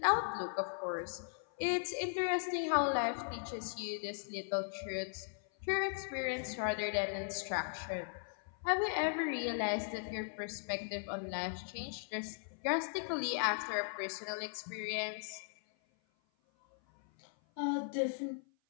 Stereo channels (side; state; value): right; silent; 52 dB below the other